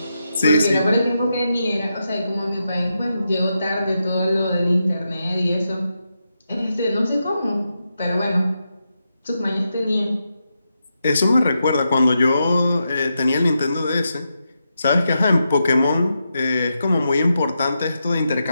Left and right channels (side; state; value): both; inverted; correlation -0.86